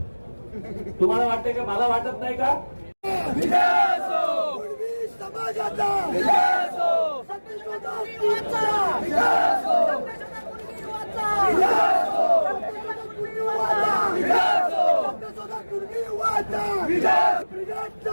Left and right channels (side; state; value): both; inverted; correlation -1.00